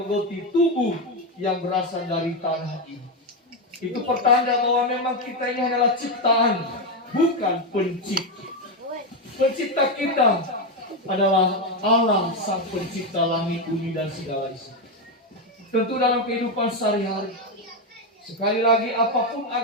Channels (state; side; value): normal; both; correlation 0.08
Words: tubuh yang berasal dari tanah ini. Itu pertanda bahwa memang kita ini adalah ciptaan, bukan pencipta. Pencipta kita adalah Allah, sang pencipta langit, bumi, dan segala isi. Tentu dalam kehidupan sehari-hari, sekali lagi apapun